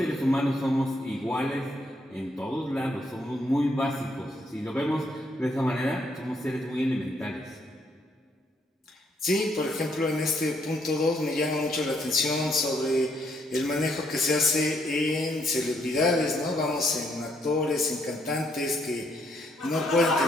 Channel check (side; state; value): both; normal; correlation 0.72